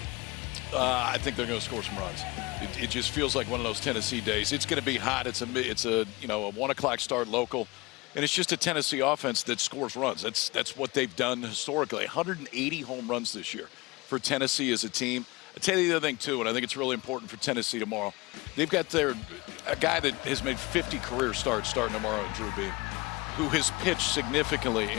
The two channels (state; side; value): quieter; right; 23.7 dB